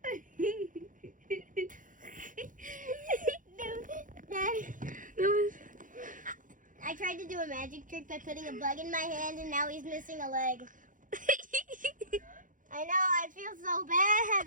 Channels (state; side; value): late; left; 0.38 ms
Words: I tried to do a magic trick by putting a bug in my hand, and now he's missing a leg. I know, I feel so